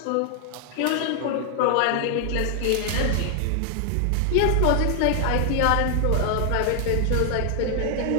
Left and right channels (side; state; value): both; different; correlation 0.00